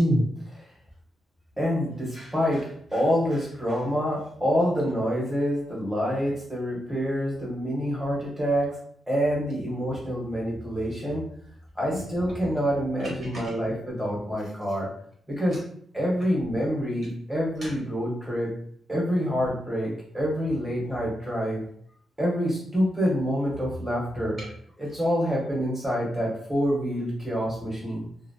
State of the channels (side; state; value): both; normal; correlation 0.85